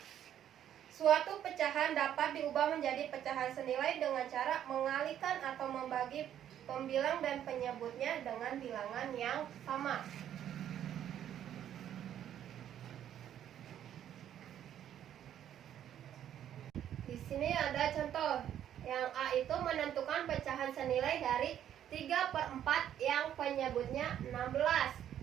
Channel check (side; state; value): left; quieter; 10.5 dB